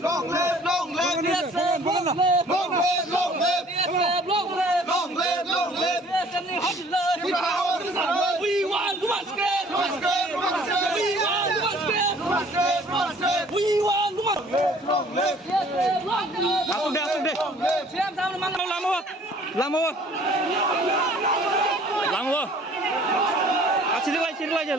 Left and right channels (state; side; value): normal; both; correlation 0.54